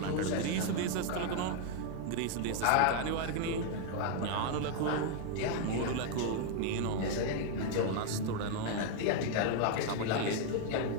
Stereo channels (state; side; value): different; both; correlation 0.00